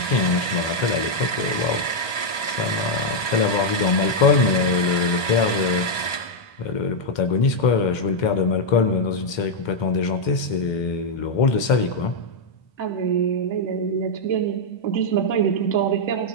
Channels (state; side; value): late; right; 1.2 ms